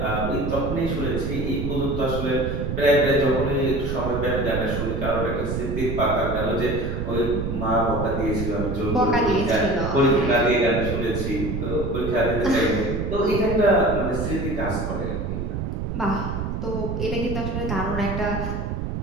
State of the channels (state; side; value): noise; right; rumble, 3 dB below the sound